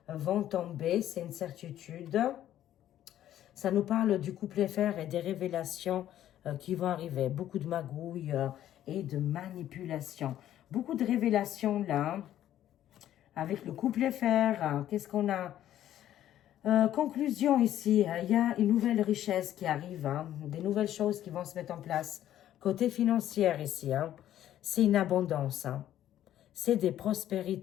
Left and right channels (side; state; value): right; quieter; 12.0 dB